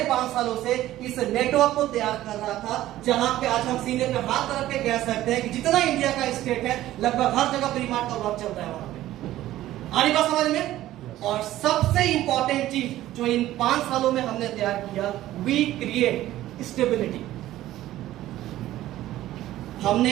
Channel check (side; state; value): left; quieter; 14.5 dB